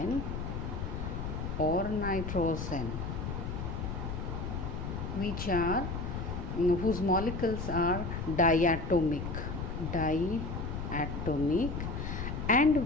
or nitrogen, which are whose molecules are diatomic, and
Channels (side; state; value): left; noise; rumble, 4 dB below the sound